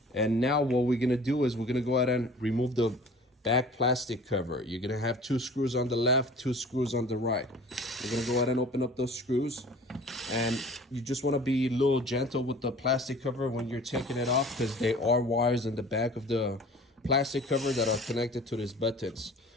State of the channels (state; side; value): normal; both; correlation 0.45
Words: And now what we're gonna do is we're gonna go ahead and remove the back plastic cover. You're gonna have 2 screws on the left, 2 screws on the right. We're gonna go ahead and open up those screws. And you just wanna be a little gentle with the plastic cover when you're taking it off, because there are wires in the back of the plastic cover that are connected to these buttons.